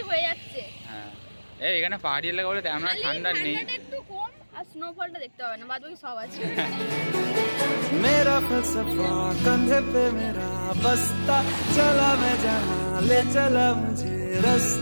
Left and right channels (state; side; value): inverted; both; correlation -1.00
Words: হয়ে যাচ্ছে। হ্যাঁ, এখানে পাহাড়ি এলাকা বলে তেমন ঠান্ডা নেই, একটু কম, আর স্নোফলটা দেখতে হবে না, বাদবাকি সব আছে। मेरा फलसफा कंधे पे मेरा बस्ता, चला मैं जहाँ ले चला मुझे